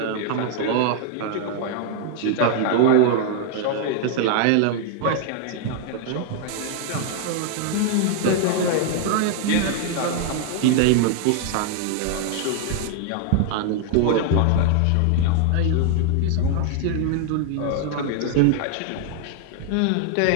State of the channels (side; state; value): both; different; correlation 0.00